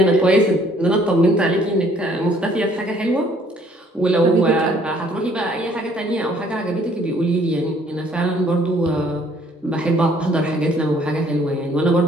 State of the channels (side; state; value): both; normal; correlation 0.61